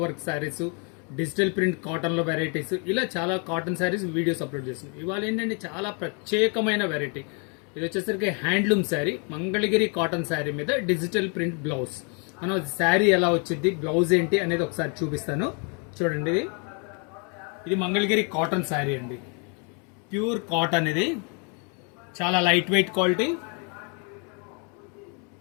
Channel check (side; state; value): right; quieter; 36.6 dB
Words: work saris, digital print కాటన్లో వెరైటీస్, ఇలా చాలా కాటన్ శారీస్ వీడియోస్ అప్లోడ్ చేస్తున్నాం. ఇవాళ ఏంటంటే చాలా ప్రత్యేకమైన వెరైటీ. ఇది వచ్చేసరికి హ్యాండ్లూమ్ శారీ, మంగళగిరి కాటన్ శారీ మీద డిజిటల్ ప్రింట్ బ్లౌజ్. మనం శారీ ఎలా వచ్చింది, బ్లౌజ్ ఏంటి అనేది ఒకసారి చూపిస్తాను. చూడండి, ఇది మంగళగిరి కాటన్ శారీ అండి. ప్యూర్ కాటన్, ఇది చాలా లైట్ వెయిట్ క్వాలిటీ.